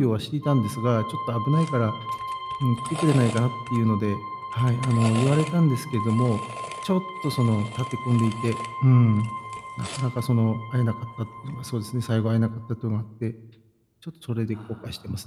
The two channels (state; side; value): identical; both; correlation 1.00